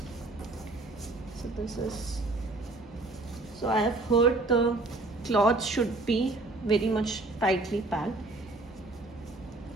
So this is, so I have heard the cloth should be very much tightly packed,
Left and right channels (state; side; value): quieter; left; 3.0 dB